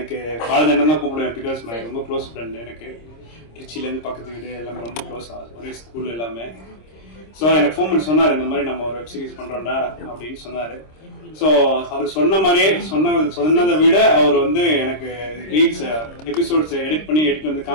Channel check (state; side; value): late; right; 26 ms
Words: பாலஜன் தான் கூப்பிடுவேன், பிகாஸ் மை ரொம்ப க்ளோஸ் ஃப்ரெண்ட். எனக்கு திருச்சியிலேருந்து பக்கத்து வீடு எல்லாமே ரொம்ப க்ளோஸ், ஒரே ஸ்கூல் எல்லாமே. ஸோ எனக்கு ஃபோன் பண்ணி சொன்னார், இந்த மாதிரி நம்ம ஒரு வெப் சீரிஸ் பண்ணுறோம்டா அப்படின்னு சொன்னார். ஸோ அவர் சொன்ன மாதிரியே சொன்னதை விட அவர் எனக்கு ரீல்ஸ் எபிசோட்ஸ் எடிட் பண்ணி